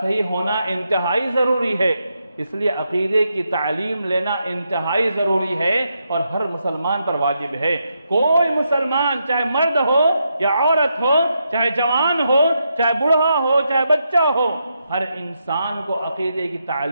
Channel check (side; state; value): both; inverted; correlation -0.82